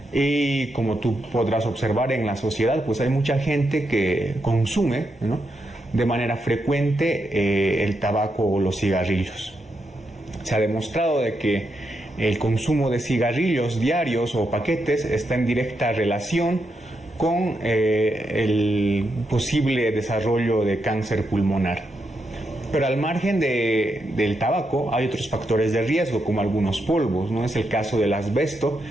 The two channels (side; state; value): both; normal; correlation 0.83